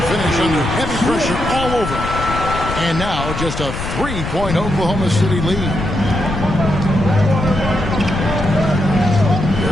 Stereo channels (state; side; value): noise; left; rumble, 6 dB below the sound